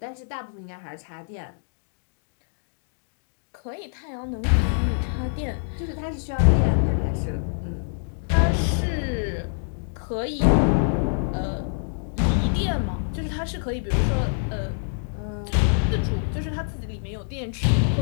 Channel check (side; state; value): right; silent; digital silence